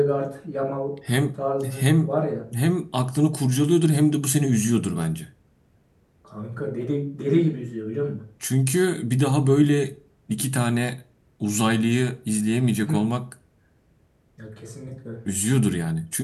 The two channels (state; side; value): identical; both; correlation 1.00